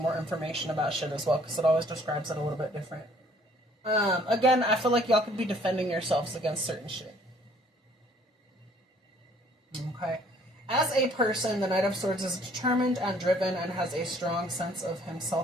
information about shit as well, because it always describes it a little bit different. Again, I feel like y'all could be defending yourselves against certain shit. Okay? As a person, the Knight of Swords is determined and driven and has a strong sense of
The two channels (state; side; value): normal; both; correlation 0.59